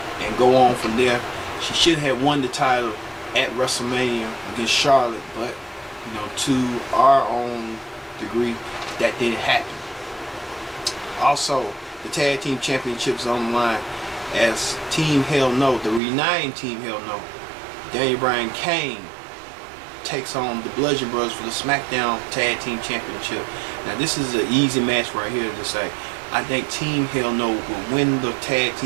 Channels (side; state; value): left; drops out; at 16.0 s